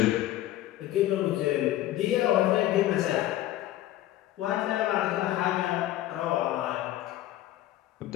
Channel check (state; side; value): quieter; right; 14.3 dB